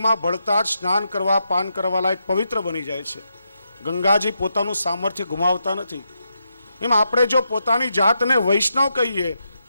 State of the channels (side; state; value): both; inverted; correlation -0.83